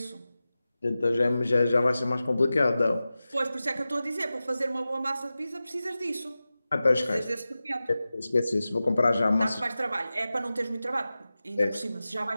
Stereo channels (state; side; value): inverted; both; correlation -0.95